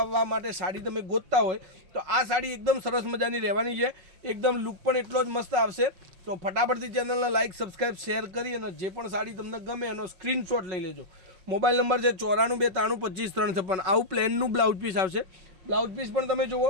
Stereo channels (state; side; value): late; left; 5.4 ms